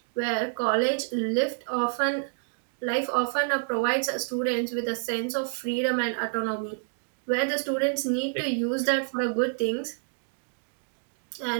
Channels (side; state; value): left; silent; digital silence